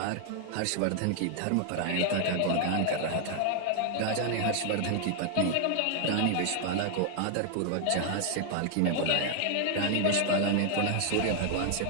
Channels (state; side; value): different; both; correlation 0.00